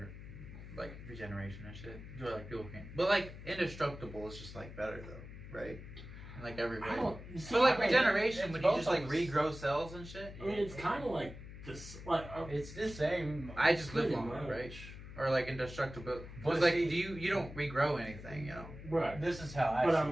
and shit. Do like people can't, but like indestructible is just like better though, right? In, like every way. I don't. See, But like I don't- regeneration, it's when you both just like of us. regrow cells and shit. I mean, it's kind of like this. Like, It's the same. I just live pretty longer, much. right? Or like indestructible. But But like, see- you don't regrow anything, you know? Right. This is how I But see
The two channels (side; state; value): left; noise; hum, 13 dB below the sound